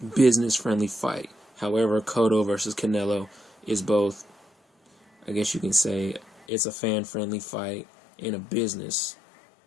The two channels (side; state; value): right; drops out; at 6.5 s